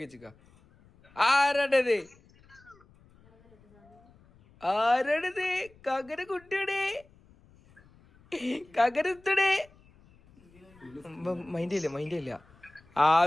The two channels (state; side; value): noise; left; rumble, 28 dB below the sound